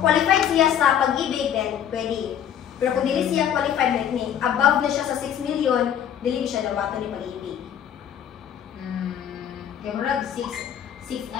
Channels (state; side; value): quieter; right; 9.4 dB